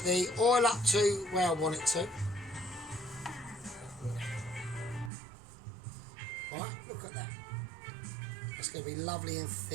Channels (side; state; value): left; drops out; at 5.1 s